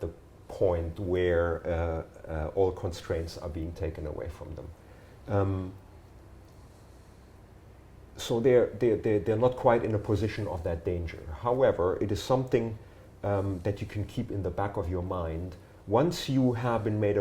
the point where all constraints are being taken away from them. So they're not quite in a position of that danger. However, it is something that you can keep in the back of your mind. Once you have been made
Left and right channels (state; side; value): identical; both; correlation 1.00